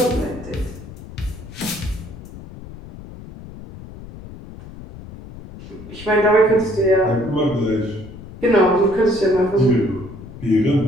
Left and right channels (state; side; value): noise; left; rumble, 15 dB below the sound